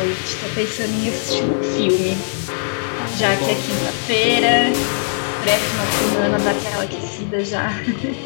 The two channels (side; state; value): right; silent; 66 dB below the other